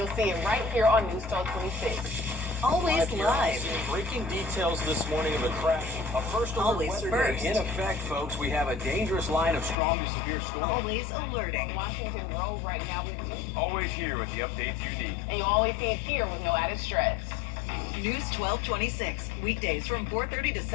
see it right here on News 1226. Always live. Breaking details this morning of a crash. A first alert Always weather first. day in effect, folks. We have a dangerous line of strong to severe storms. Always alerting. Washington Road right now with you. Always here with the updates you need. And you always see it here with no added stress. News 1226, weekdays from 4:30 to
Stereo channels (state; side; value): drops out; right; at 9.8 s